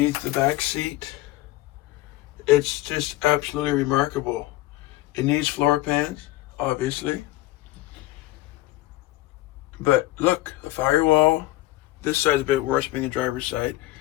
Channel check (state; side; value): quieter; right; 17.4 dB